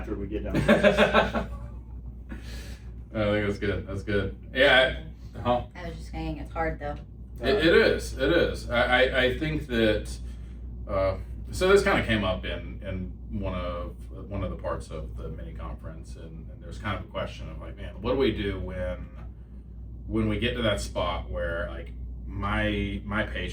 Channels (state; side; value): identical; both; correlation 1.00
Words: we get done. I think that's good. That's good. Yeah. I was just saying it's hard though. It is. It is. I think that. So this kind of came up in one of the parts of the mini conference, and there's kind of a question of like, man, what do we do when we get to that spot where like my